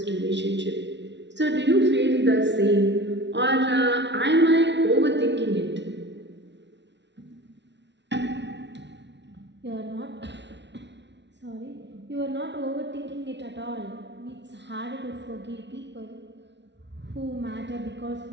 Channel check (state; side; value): late; left; 0.51 ms